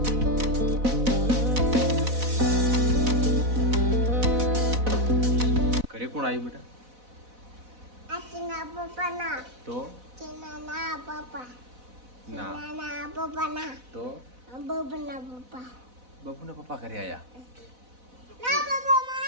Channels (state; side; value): late; left; 4.0 ms